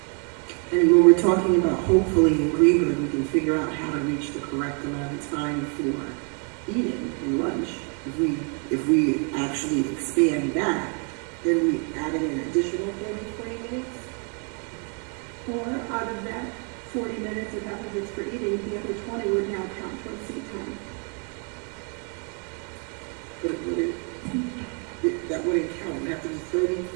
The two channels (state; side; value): quieter; left; 39.0 dB